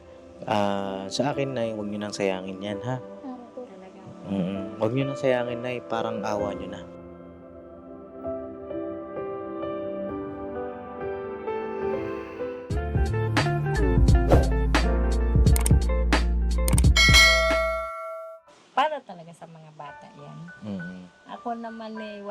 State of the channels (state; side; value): identical; both; correlation 1.00